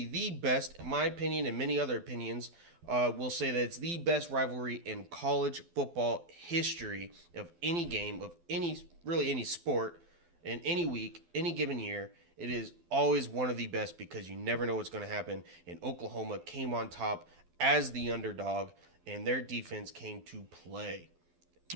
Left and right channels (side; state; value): left; late; 12 ms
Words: the best, in my opinion and many other opinions, will say that it's the best rivalry in college football history of any game, of any sport, in any week, any given year. It is always one of the best because you never know what's going to happen. And Oklahoma came on top as the underdog, and their defense came to play.